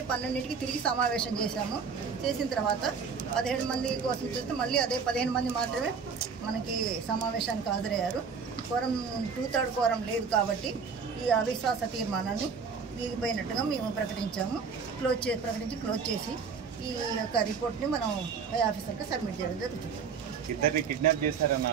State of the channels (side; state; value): left; quieter; 5.8 dB